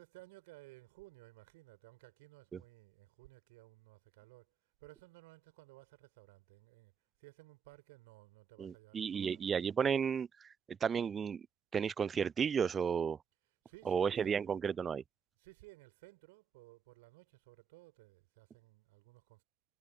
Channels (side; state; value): left; quieter; 6.8 dB